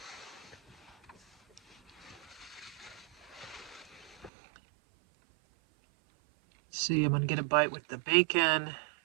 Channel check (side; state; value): left; drops out; at 4.3 s